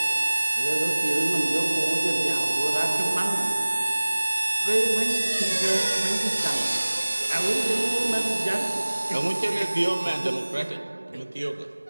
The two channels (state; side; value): inverted; both; correlation -1.00